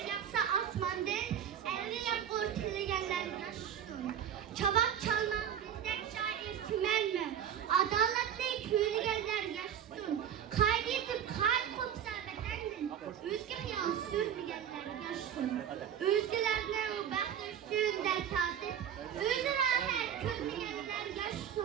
asmandan, elli yap ortalayanlar yaşasın. Çabak çalmak bizdek şair tümen mi? Adaletli yürügenler yaşasın. Kaydedip kalp kopsa bedendin. Özge hayal sürmeyenler yaşasın. Özgelerine o bakışın dert tatip. Öz rahat körmeyenler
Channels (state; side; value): quieter; left; 9.1 dB